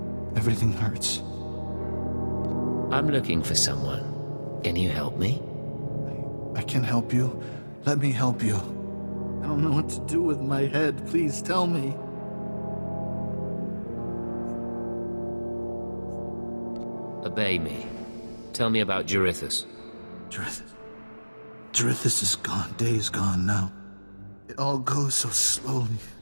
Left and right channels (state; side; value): inverted; both; correlation -1.00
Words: Everything hurts. I'm looking for someone. Can you help me? I can help you. Let me help you. I don't know what to do with my head. Please tell me. Obey me. Tell me about Jarithus. Jarithus is gone. Days gone now. It all goes so slowly.